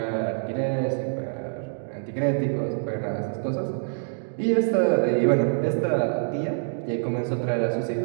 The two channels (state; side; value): silent; left; digital silence